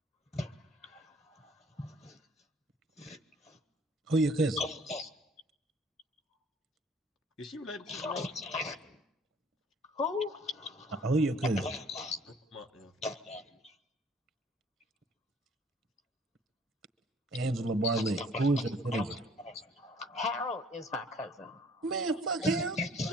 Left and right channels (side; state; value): both; normal; correlation 0.56